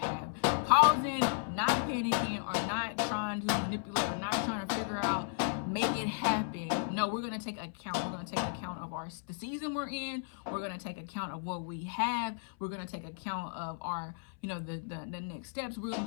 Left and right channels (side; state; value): right; silent; 55 dB below the other